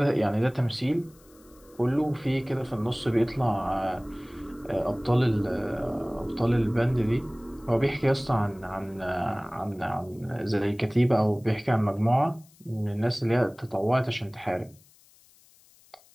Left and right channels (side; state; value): left; noise; hiss, 28 dB below the sound